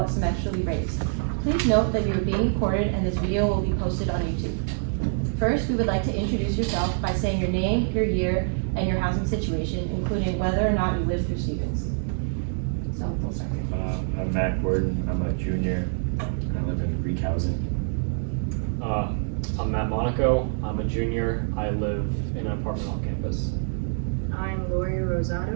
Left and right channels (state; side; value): silent; left; digital silence